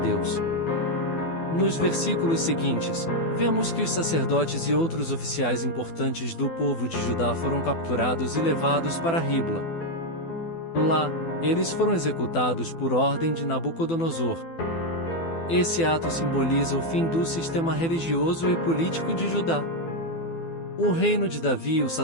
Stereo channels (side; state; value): right; late; 12 ms